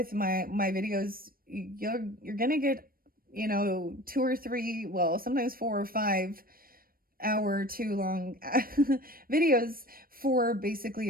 my videos, you're gonna get, 2 or 3, well, sometimes 4 or 5 hour too long videos for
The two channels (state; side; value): late; left; 0.42 ms